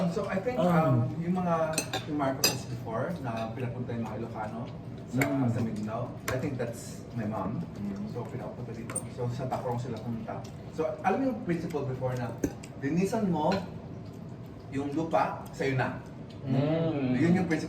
So I think yung Marcos before na pinapunta yung mga Ilocano sa Mindanao, I think that's my mom. So pinapunta dito. So sa Tacrong sila pumunta. So alam mo yung principle before na linisan mo yung lupa, sa'yo na. Yun yung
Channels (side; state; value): both; identical; correlation 1.00